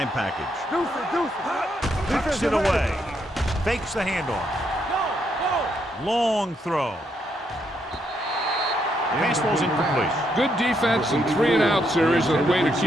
package. Deuce it. Tucks it away. Fakes the handoff. Long throw. Pass ball's incomplete. Good defense and 3-and-out series is a way to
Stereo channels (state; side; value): normal; both; correlation 0.77